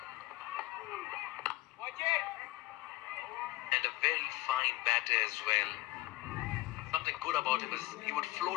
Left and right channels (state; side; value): quieter; right; 18.7 dB